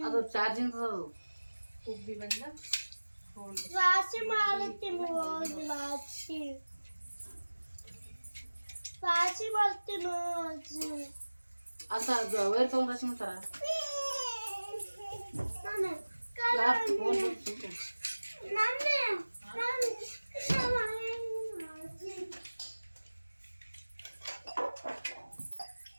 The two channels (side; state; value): both; inverted; correlation -1.00